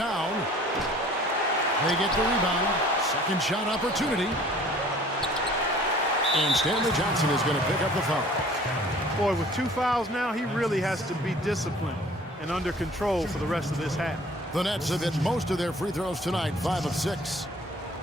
They get the rebound. Second shot opportunity. And Stanley Johnson is going to pick up the foul. Boy, with 2 fouls now, he really has to be disciplined and under control for the rest of this half. The Nets have hit most of their free throws tonight, 5 of 6.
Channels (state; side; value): normal; both; correlation 0.51